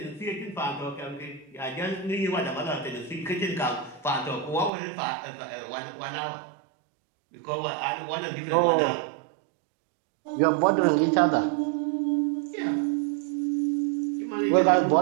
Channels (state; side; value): drops out; left; at 4.7 s